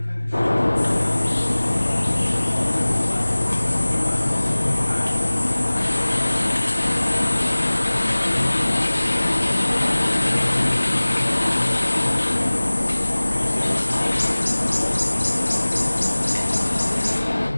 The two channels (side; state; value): both; inverted; correlation -1.00